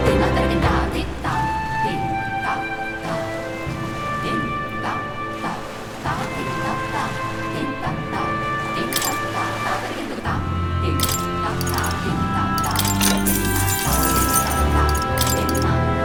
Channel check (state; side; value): identical; both; correlation 1.00